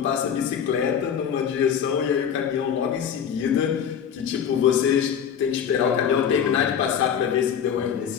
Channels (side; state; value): right; quieter; 8.1 dB